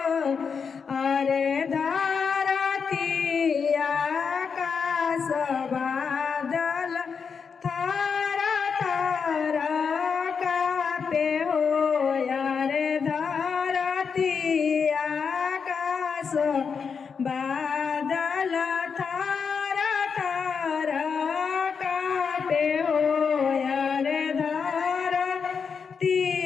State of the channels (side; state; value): right; quieter; 5.9 dB